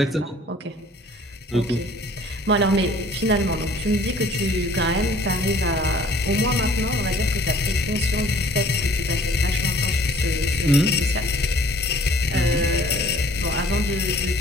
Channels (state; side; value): normal; both; correlation 0.55